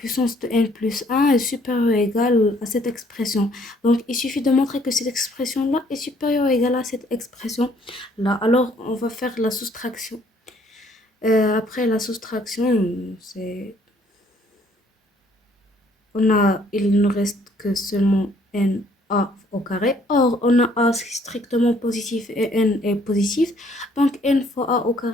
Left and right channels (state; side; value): normal; both; correlation 0.63